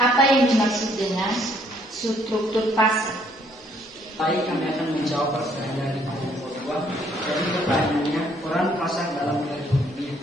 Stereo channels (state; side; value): normal; both; correlation 0.66